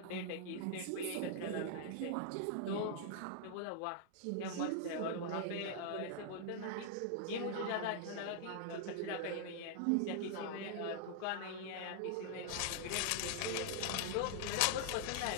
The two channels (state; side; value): different; both; correlation 0.00